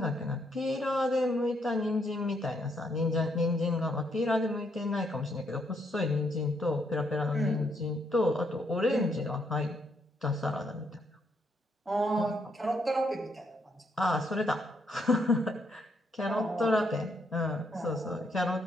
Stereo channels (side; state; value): both; normal; correlation 0.74